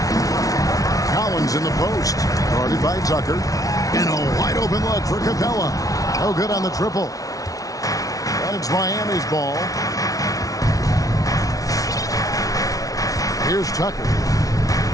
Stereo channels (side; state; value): right; late; 0.17 ms